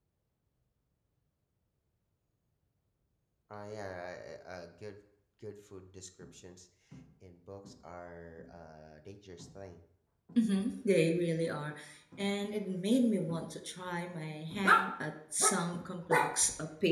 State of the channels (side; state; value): both; identical; correlation 1.00